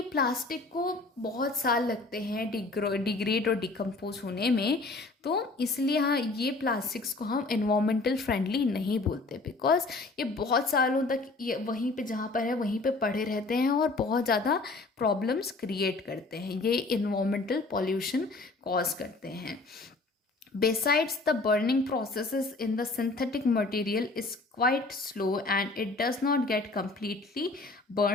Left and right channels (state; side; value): quieter; right; 3.4 dB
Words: प्लास्टिक को बहुत साल लगते हैं डिग्रेड और डिकम्पोज होने में, तो इसलिए हाँ ये प्लास्टिक्स को हम इन्वायरमेंटल फ्रेंडली नहीं बोलते, बिकॉज ये बहुत सालों तक ये वहीं पे जहाँ पर है वहीं पे पड़े रहते हैं और बहुत ज़्यादा प्रॉब्लम्स क्रिएट करते हैं, ये इन्वायरमेंटल पॉल्यूशन कॉज करते हैं। Besides, the burning processes in the synthetic material is quite slow and it does not get completely